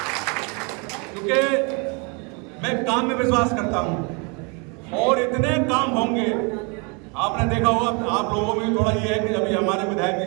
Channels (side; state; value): left; quieter; 32.7 dB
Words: क्योंकि मैं काम में विश्वास करता हूं और इतने काम होंगे। आपने देखा होगा, आप लोगों में थोड़ा ये है कि अभी हमारे विधायक के